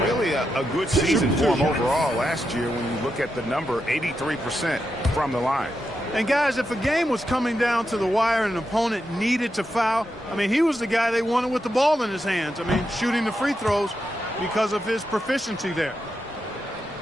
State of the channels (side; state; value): both; normal; correlation 0.86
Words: Really a good season for him overall last year when you look at the number, 83% from the line. And, guys, if a game was coming down to the wire and an opponent needed to foul, I mean, he was the guy they wanted with the ball in his hands. I mean, shooting the free throws because of his proficiency there.